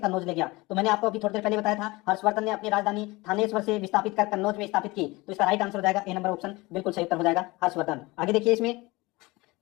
ले गया? तो मैंने आपको अभी थोड़ी देर पहले बताया था, हर्षवर्धन ने अपनी राजधानी थानेश्वर से विस्थापित कर कन्नौज में स्थापित की। तो इसका राइट आंसर हो जाएगा ए नंबर ऑप्शन बिल्कुल सही उत्तर हो जाएगा हर्षवर्धन। आगे देखिए, इसमें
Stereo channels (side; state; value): right; quieter; 22.3 dB